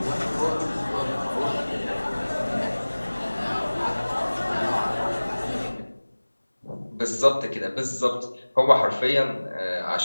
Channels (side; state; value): both; inverted; correlation -1.00